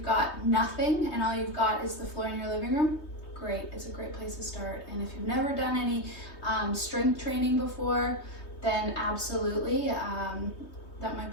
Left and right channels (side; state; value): right; late; 3.2 ms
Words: got nothing and all you've got is the floor in your living room, great. It's a great place to start. And if you've never done any strength training before, then absolutely, that might